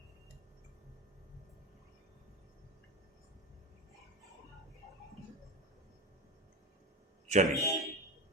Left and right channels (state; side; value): normal; both; correlation 0.22